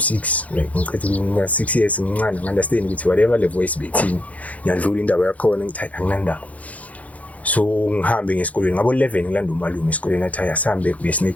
like ngicela 6 years ngincane understand ukuthi whatever le voice bethini ngiyadlula indaba yakhona ngithi anginandaba. So ngihambe ngesikolweni ngabo 11 ngilanda umalume esikolweni athi ayasambe uye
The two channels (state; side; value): late; right; 0.069 ms